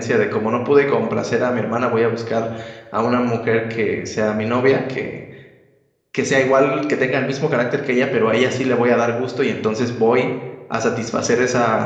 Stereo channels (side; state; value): both; identical; correlation 1.00